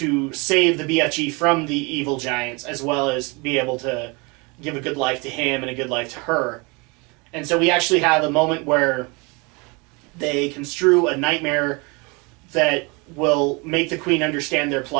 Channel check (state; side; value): quieter; left; 28.4 dB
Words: save the BFG from the evil giants, as well as be able to give a good life to him and a good life to her. And so we actually have a moment where they construe a nightmare that will make the Queen understand their